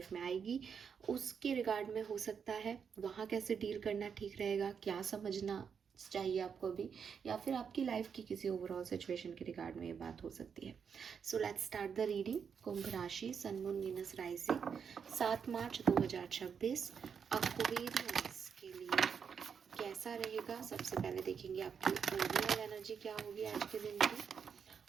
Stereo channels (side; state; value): left; quieter; 6.8 dB